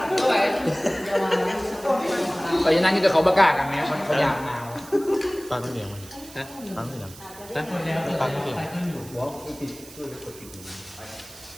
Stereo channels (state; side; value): noise; right; hiss, 18 dB below the sound